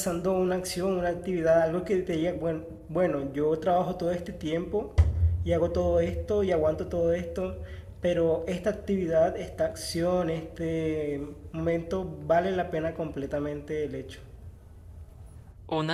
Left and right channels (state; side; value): identical; both; correlation 1.00